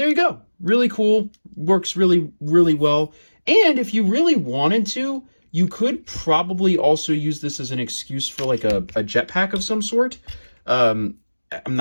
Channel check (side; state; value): both; inverted; correlation -1.00